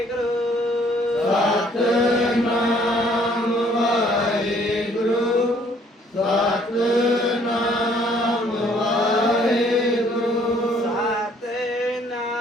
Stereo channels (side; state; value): both; normal; correlation 0.62